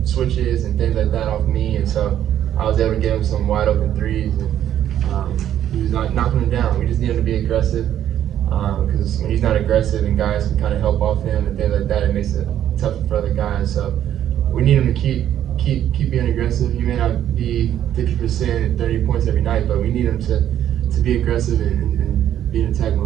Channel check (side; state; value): left; quieter; 10.9 dB